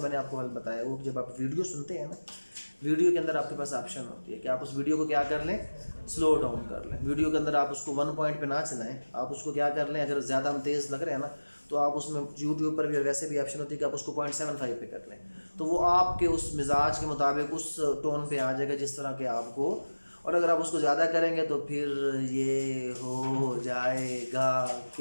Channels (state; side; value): inverted; both; correlation -1.00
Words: मैंने आपको हल बताया, वो जब आप वीडियो सुनते हैं ना, वीडियो के अंदर आपके पास ऑप्शन होती है कि आप उस वीडियो को क्या कर लें, स्लो डाउन कर लें। वीडियो के अंदर आप उसको 1 पॉइंट पे ना चलाएं, आप उसको क्या कर लें, अगर ज़्यादा हम तेज़ लग रहे हैं ना तो आप उसमें यूट्यूब पर भी और वैसे भी ऑप्शन होती है कि आप उसको 0.75 पे कर लें, तो वो आपके उस मिजाज के मुताबिक उस टोन पे आ जाएगा जिस तरह के आपको। और अगर आप उसको ज़्यादा करेंगे तो फिर ये हो जाएगा